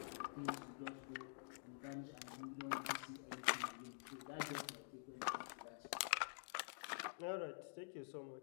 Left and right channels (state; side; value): silent; right; digital silence